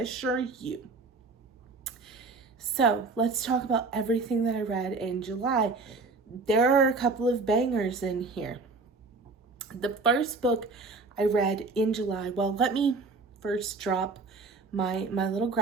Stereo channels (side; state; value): left; quieter; 3.9 dB